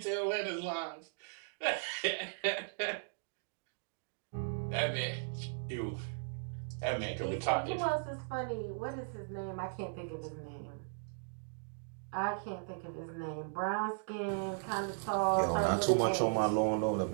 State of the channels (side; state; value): left; silent; digital silence